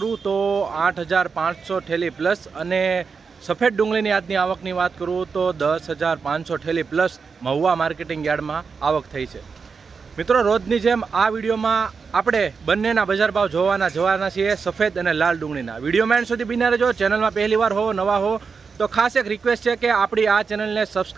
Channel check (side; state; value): left; quieter; 5.3 dB